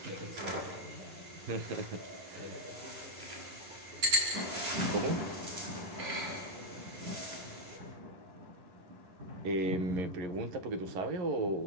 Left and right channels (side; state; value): left; late; 11 ms